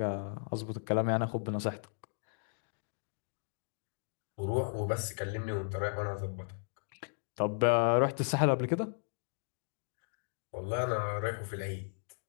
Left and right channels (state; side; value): silent; right; digital silence